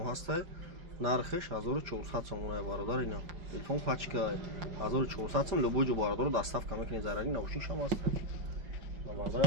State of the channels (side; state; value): left; late; 5.1 ms